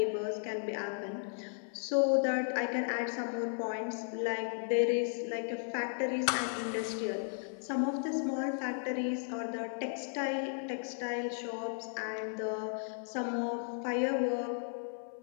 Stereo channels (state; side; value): silent; right; 54 dB below the other